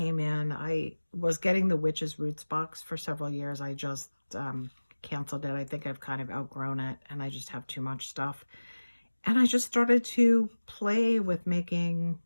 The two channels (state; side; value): inverted; both; correlation -1.00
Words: in. I was getting the Witch's Roots box for several years. I just canceled it. I think I've kind of outgrown it and I just have too much stuff. And I just started to play with making